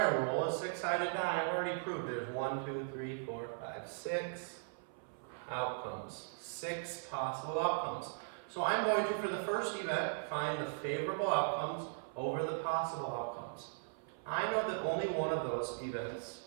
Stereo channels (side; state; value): left; silent; 52 dB below the other